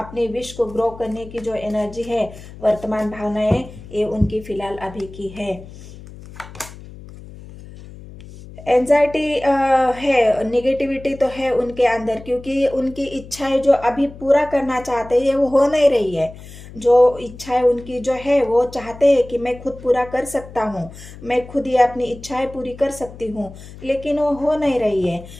विश को ग्रो करने की जो एनर्जी है, वर्तमान भावनाएं, ये उनकी फिलहाल अभी की है। एंजाइटी है, निगेटिविटी तो है उनके अंदर, क्योंकि उनकी इच्छाएं जो अभी पूरा करना चाहते हैं वो हो नहीं रही है। जो इच्छाएं उनकी जो है वो चाहते हैं कि मैं खुद पूरा कर सकता हूँ, मैं खुद ही अपनी इच्छाएं पूरी कर सकती हूँ, लेकिन वो हो नहीं रही है।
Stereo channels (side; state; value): left; noise; hum, 16 dB below the sound